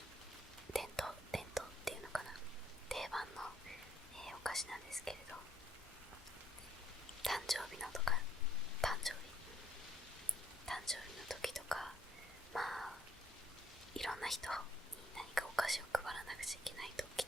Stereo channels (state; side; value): normal; both; correlation 0.65